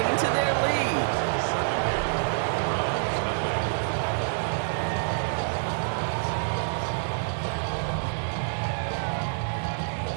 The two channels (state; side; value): silent; left; 60 dB below the other